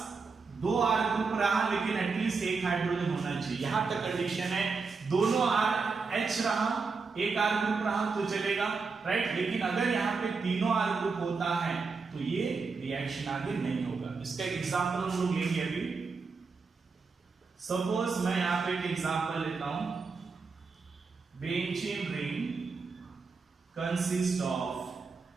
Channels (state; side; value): quieter; left; 4.7 dB